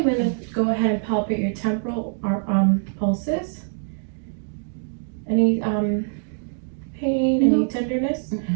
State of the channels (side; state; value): left; silent; digital silence